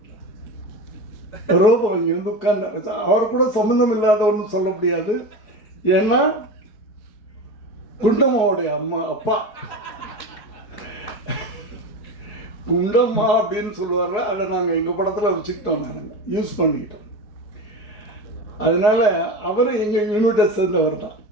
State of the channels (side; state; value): right; late; 4.7 ms